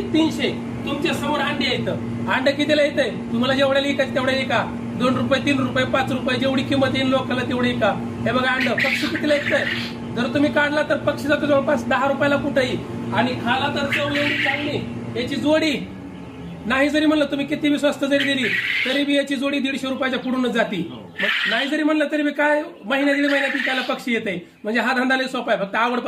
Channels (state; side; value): identical; both; correlation 1.00